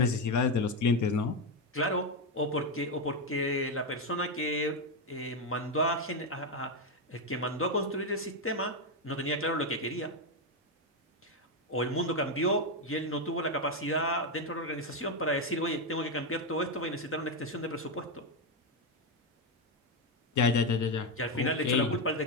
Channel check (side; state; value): both; normal; correlation 0.07